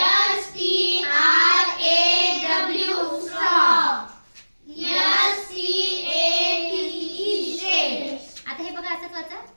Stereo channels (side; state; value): both; inverted; correlation -1.00